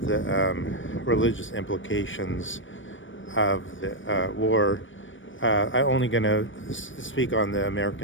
religious implications of the war? I'm only going to speak on the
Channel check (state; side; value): late; right; 0.56 ms